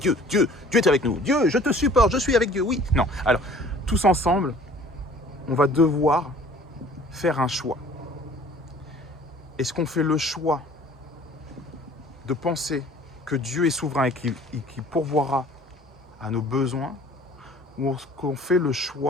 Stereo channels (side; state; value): both; normal; correlation 0.51